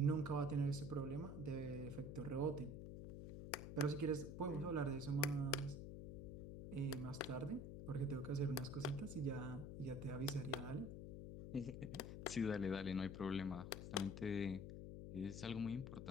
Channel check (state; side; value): noise; left; hum, 7 dB below the sound